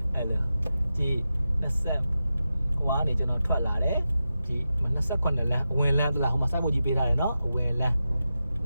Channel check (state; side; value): inverted; both; correlation -0.91